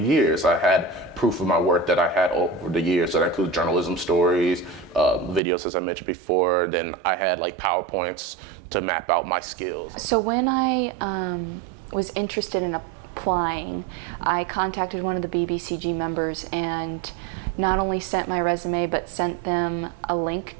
I had proof of my work that I had over the years, so that includes journalism stories, videos as I mentioned before, then I had like PowerPoints to map out my skills. So when I was interested in applying, I contacted one of the BBCG members and not only sent my resume but sent them a link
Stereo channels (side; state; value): left; drops out; at 5.4 s